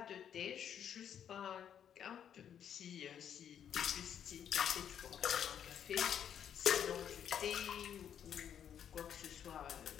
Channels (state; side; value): quieter; right; 9.0 dB